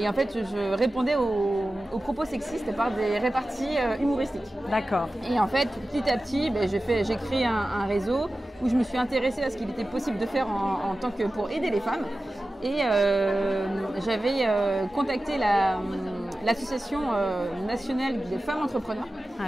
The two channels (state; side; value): normal; both; correlation 0.95